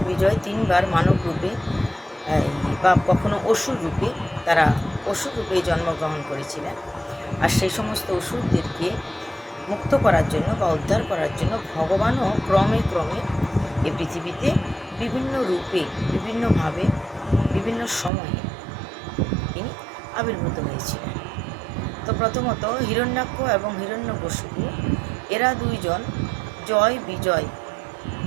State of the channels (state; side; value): drops out; left; at 18.1 s